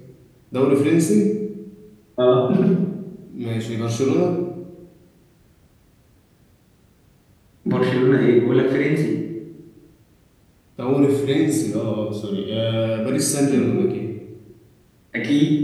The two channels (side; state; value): both; identical; correlation 1.00